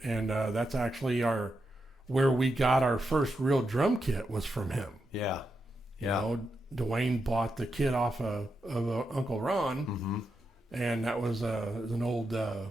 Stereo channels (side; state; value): both; normal; correlation 0.85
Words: that's actually where we got our first real drum kit was from him. Yeah. Dwayne bought the kit off of Uncle Ron, mm-hmm. and that was an old